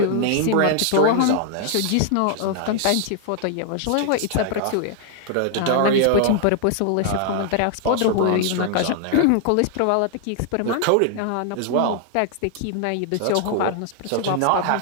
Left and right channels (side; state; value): both; different; correlation 0.00